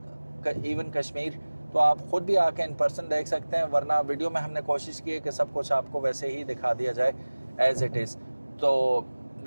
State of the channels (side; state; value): both; inverted; correlation -1.00